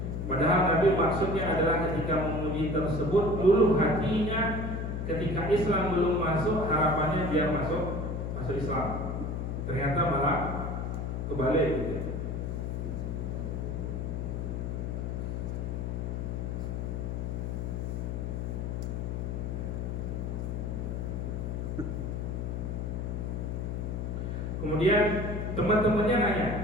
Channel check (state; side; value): noise; left; hum, 2 dB below the sound